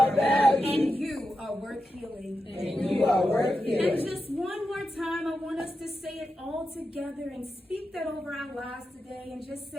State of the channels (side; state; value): both; normal; correlation 0.89